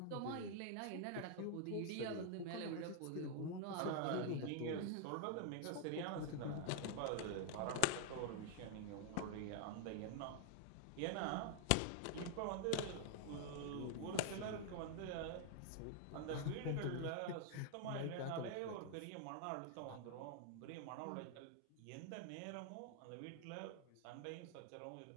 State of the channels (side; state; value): both; different; correlation 0.00